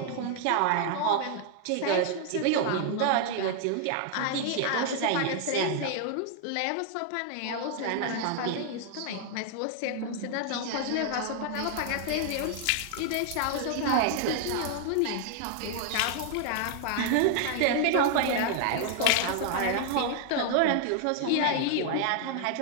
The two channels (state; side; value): different; both; correlation 0.00